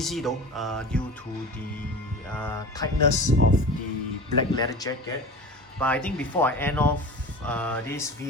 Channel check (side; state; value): both; normal; correlation 0.34